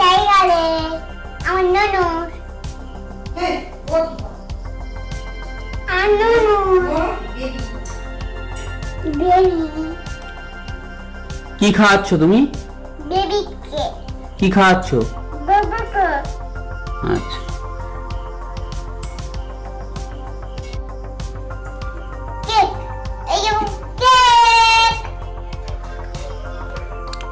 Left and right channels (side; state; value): both; identical; correlation 1.00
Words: আমার ননু হ্যাঁ, ও আর ননু বেবি কি খাওয়াচ্ছ তুমি? বেবিকে কি খাওয়াচ্ছ? বাবাকে আচ্ছা কেক। এই যে কেক